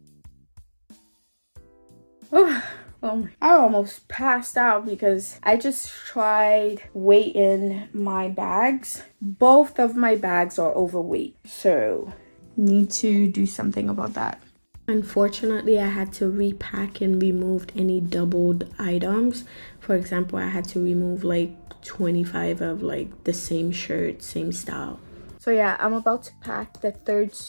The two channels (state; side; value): inverted; both; correlation -1.00